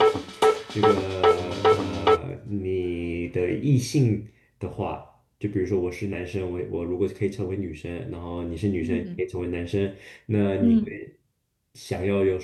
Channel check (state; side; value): identical; both; correlation 1.00